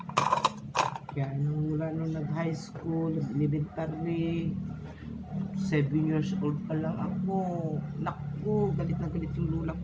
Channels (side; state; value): both; identical; correlation 1.00